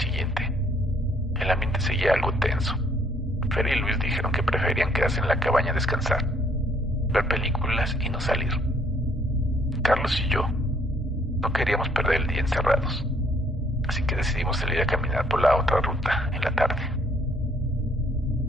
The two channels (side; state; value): both; normal; correlation 0.65